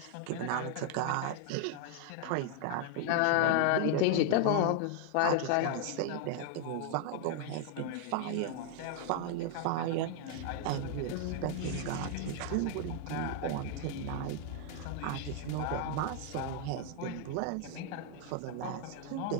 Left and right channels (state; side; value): different; both; correlation 0.00